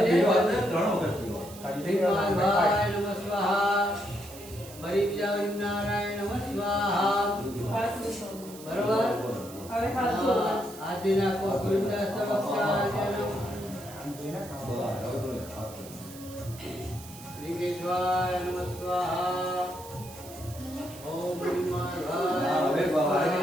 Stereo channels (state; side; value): noise; right; hiss, 17 dB below the sound